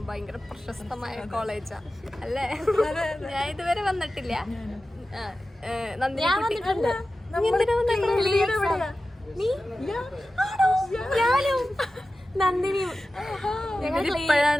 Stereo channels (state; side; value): normal; both; correlation 0.94